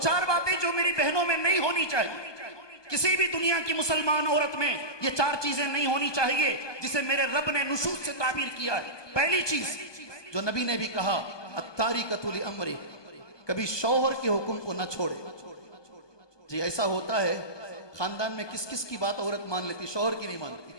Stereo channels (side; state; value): right; late; 1.2 ms